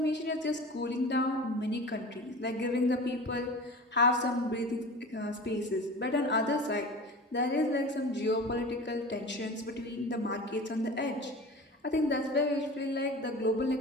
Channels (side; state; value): both; normal; correlation 0.35